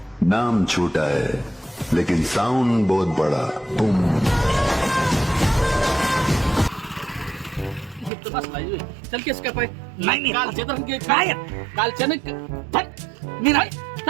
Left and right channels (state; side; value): drops out; left; at 8.1 s